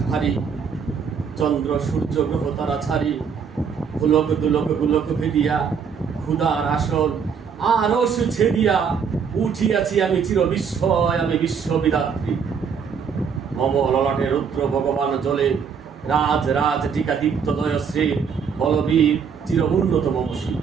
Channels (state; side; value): quieter; left; 6.5 dB